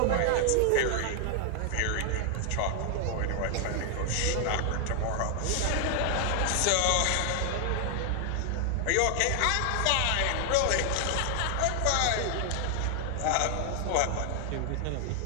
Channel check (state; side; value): different; both; correlation 0.00